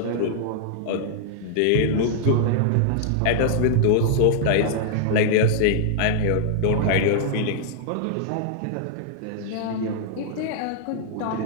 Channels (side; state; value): both; different; correlation -0.01